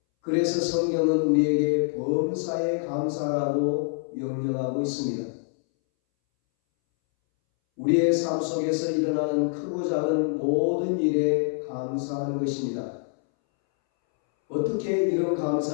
그래서 성경은 우리에게 범사에 감사하라고 명령하고 있습니다. 우리의 삶 속에서 일어나는 크고 작은 모든 일에 감사하는 것입니다. 어떻게 이런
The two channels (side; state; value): right; silent; 61 dB below the other